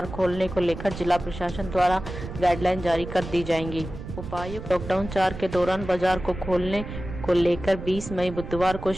खोलने को लेकर जिला प्रशासन द्वारा गाइडलाइन जारी कर दी जाएंगी। उपायुक्त लॉकडाउन 4 के दौरान बाजार को खोलने को लेकर 20 मई बुधवार को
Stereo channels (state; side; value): noise; right; rumble, 10 dB below the sound